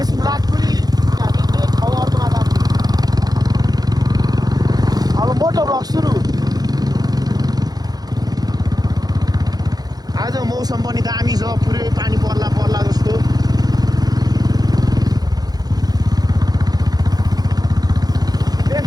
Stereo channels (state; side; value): late; left; 0.19 ms